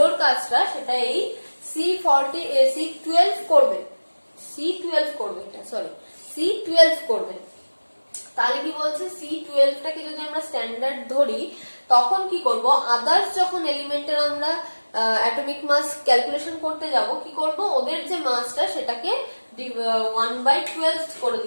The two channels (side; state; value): both; inverted; correlation -1.00